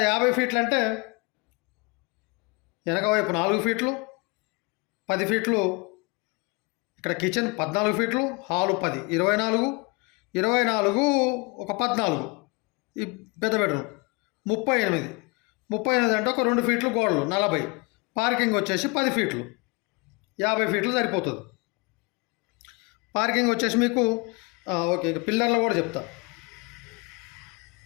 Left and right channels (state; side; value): quieter; right; 28.9 dB